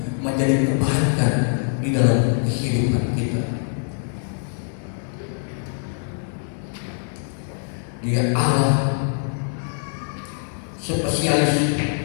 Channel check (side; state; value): right; silent; digital silence